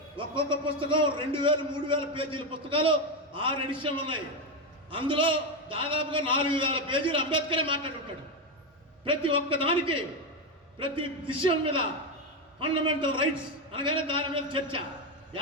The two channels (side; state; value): both; normal; correlation 0.10